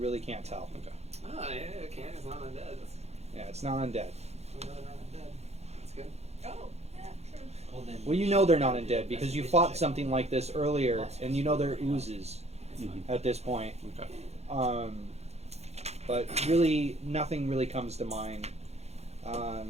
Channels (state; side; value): late; left; 0.31 ms